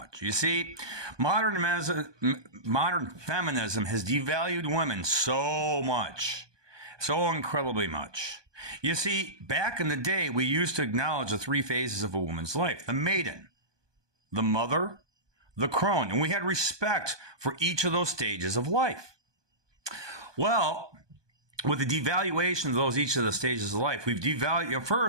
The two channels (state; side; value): late; left; 1.2 ms